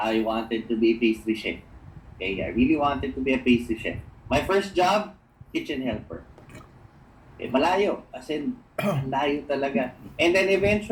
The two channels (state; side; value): identical; both; correlation 1.00